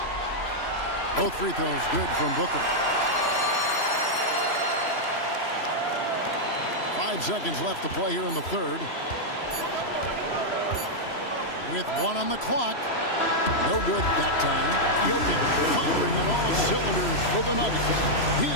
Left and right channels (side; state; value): right; late; 3.0 ms